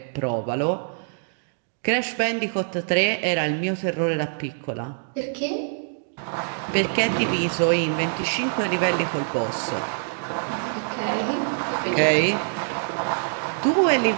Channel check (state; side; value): silent; left; digital silence